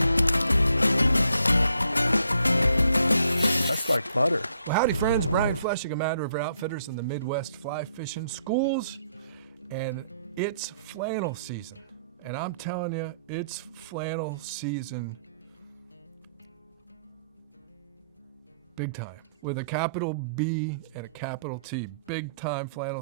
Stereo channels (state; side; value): inverted; both; correlation -0.71